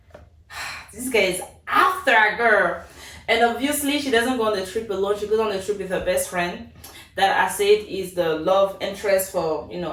guy is after a girl, and obviously she doesn't go on the trip alone. She goes on the trip with her best friend, that I said is the love interest for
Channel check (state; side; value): identical; both; correlation 1.00